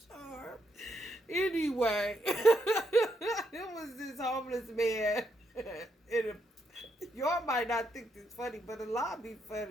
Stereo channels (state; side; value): normal; both; correlation 0.78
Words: charm? Anyway, it was this homeless man. Y'all might not think this funny, but a lot be